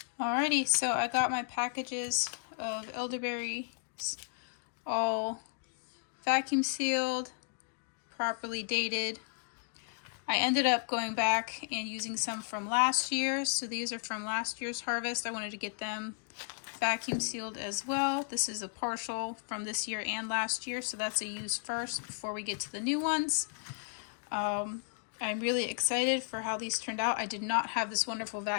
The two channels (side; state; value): right; silent; digital silence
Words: Alrighty, so I got my packages of elderberries all vacuum sealed, properly dated. I ended up going back and using some from last year. So these are from last year's harvest. I wanted to get them vacuum sealed as well. This is a partial from this year and last year. So that's a use first before we get to the new ones. I'm really excited for how these turned out. I did not have this wonderful